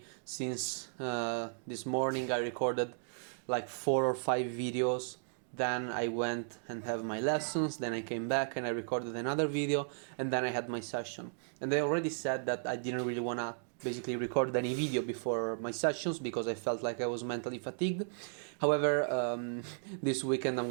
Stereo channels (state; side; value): silent; left; digital silence